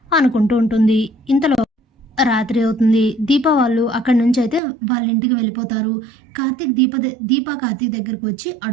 అనుకుంటూ ఉంటుంది. ఇంతలో రాత్రి అవుతుంది. దీప వాళ్ళు అక్కడి నుంచి అయితే వాళ్ళ ఇంటికి వెళ్ళిపోతారు. కార్తీక్ దీప కార్తీక్ దగ్గరికి వచ్చి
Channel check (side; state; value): left; drops out; at 4.6 s